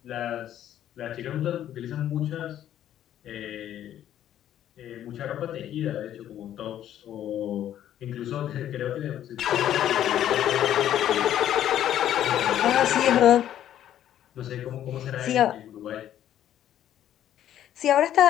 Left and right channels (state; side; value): quieter; right; 11.3 dB